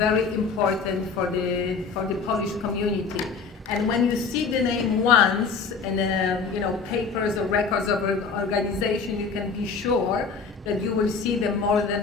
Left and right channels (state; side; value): quieter; right; 5.1 dB